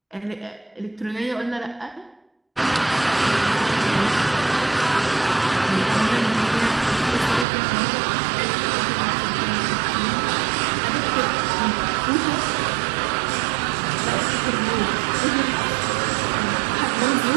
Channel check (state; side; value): drops out; left; at 7.5 s